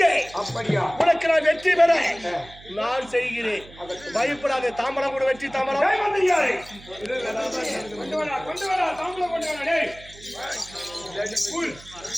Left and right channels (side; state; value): right; noise; hum, 20 dB below the sound